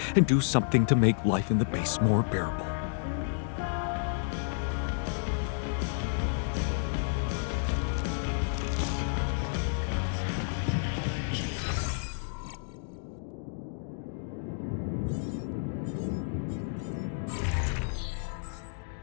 and do something to make life in the base more bearable.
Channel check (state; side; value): silent; right; digital silence